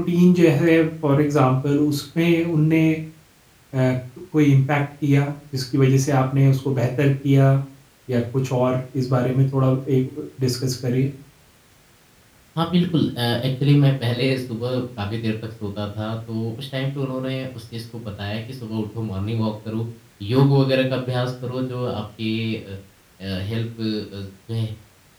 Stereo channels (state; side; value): identical; both; correlation 1.00